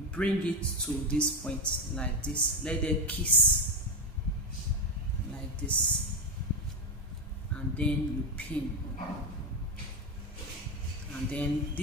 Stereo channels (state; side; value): normal; both; correlation 0.09